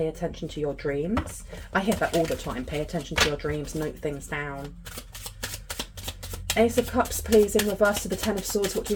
attention to your dreams. I hear that all the time. Pay attention to your dreams. Note things down. Ace of Cups, please, in reverse to the Ten of Swords. What do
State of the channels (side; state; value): both; identical; correlation 1.00